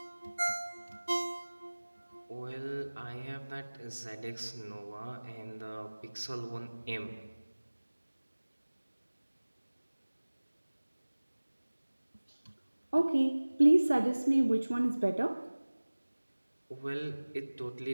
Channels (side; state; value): both; inverted; correlation -1.00